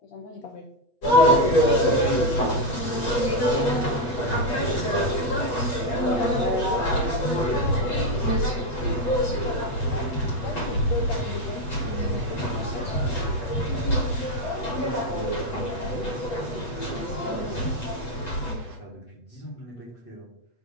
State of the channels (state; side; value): late; right; 8.1 ms